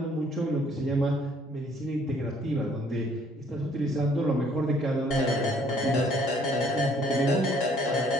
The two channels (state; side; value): normal; both; correlation 0.62